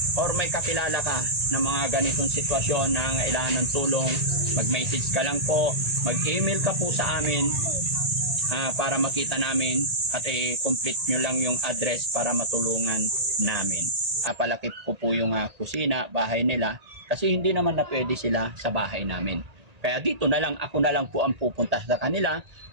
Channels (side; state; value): left; late; 1.8 ms